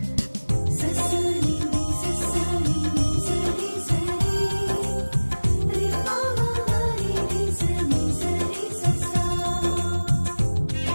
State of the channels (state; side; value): inverted; both; correlation -1.00